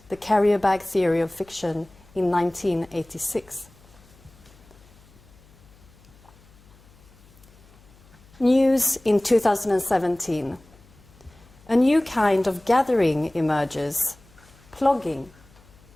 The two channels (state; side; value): noise; left; hum, 26 dB below the sound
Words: The Carrier Bag Theory of Fiction, in 1986. News in 2017. A new kind of gathering emerges, plogging.